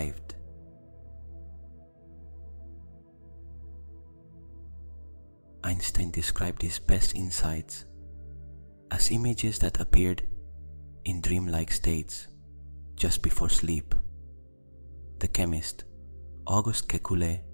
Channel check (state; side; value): inverted; both; correlation -1.00